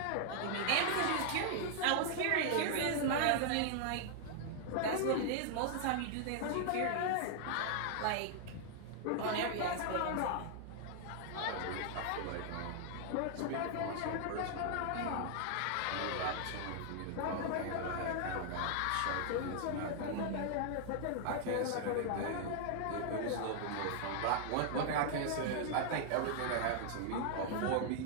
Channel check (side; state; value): both; different; correlation 0.00